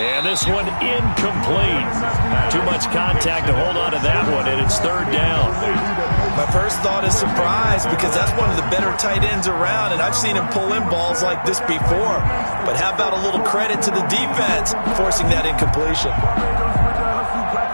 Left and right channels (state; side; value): inverted; both; correlation -1.00